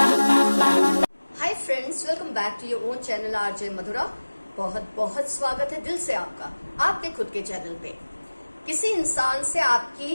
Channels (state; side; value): inverted; both; correlation -1.00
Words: friends, welcome back to your own channel RJ Madhura. बहुत बहुत स्वागत है दिल से आपका आपके खुद के चैनल पे। किसी इंसान से